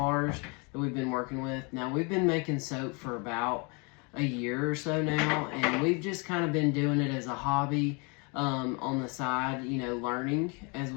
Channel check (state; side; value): quieter; right; 32.1 dB